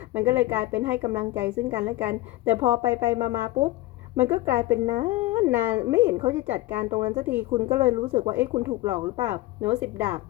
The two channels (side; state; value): right; quieter; 17.9 dB